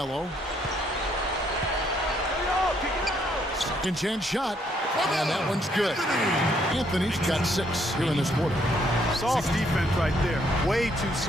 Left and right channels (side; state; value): both; normal; correlation 0.70